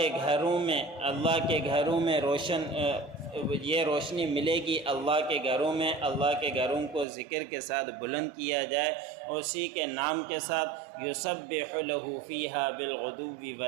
گھروں میں یہ روشنی ملے گی، اللہ کے گھروں میں، اللہ کے گھروں کو ذکر کے ساتھ بلند کیا جائے، اسی کے نام کے ساتھ، یسبح لہ فیہا بالغدو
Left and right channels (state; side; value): drops out; left; at 7.1 s